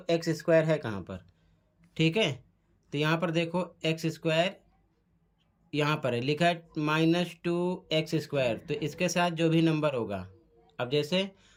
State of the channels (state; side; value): identical; both; correlation 1.00